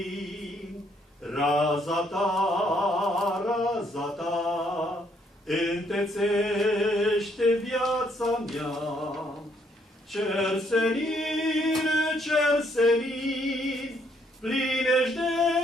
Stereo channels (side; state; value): both; normal; correlation 0.70